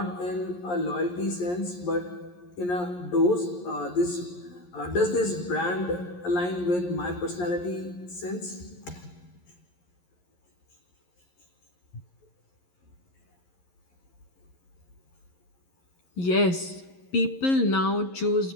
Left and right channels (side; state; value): right; late; 11 ms